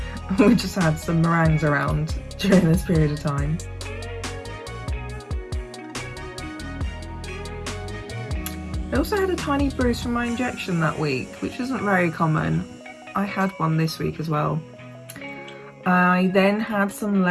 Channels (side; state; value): both; identical; correlation 1.00